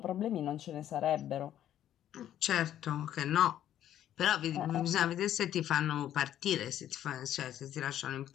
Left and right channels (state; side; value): quieter; right; 11.4 dB